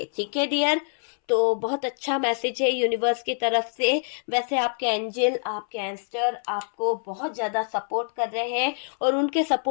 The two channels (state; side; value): silent; right; 61 dB below the other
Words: ठीक है डियर, तो बहुत अच्छा मैसेज है यूनिवर्स की तरफ से। वैसे आपके एंजल, आपके एंस्टर आपको बहुत ज्यादा सपोर्ट कर रहे हैं और उनके